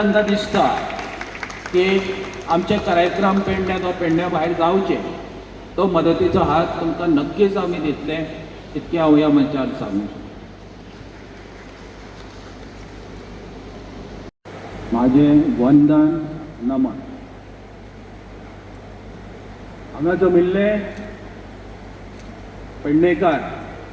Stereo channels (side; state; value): both; identical; correlation 1.00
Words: दिसता की आमचे कार्यक्रम पेडण्यात वा पेडण्या भायर जावचे तो मदतीचो हात तुमकां नक्कीच आमी दितले, इतकें हांव ह्या मंचार सांगूं। म्हाजें वंदन नमन। हांगा जमिल्ले पेडणेकार